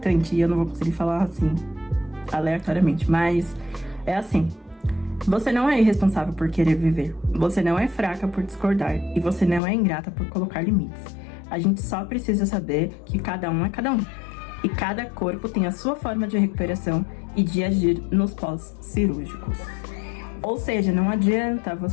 e eu não vou conseguir falar assim, aleatoriamente. Mas é assim: você não é irresponsável por querer viver. Você não é fraca por discordar. E você não é ingrata por colocar limites. A gente só precisa saber que cada um é cada um. E cada corpo tem a sua forma de recuperação e de agir nos pós-cirúrgicos. Ou seja, não adianta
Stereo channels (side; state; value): right; drops out; at 9.6 s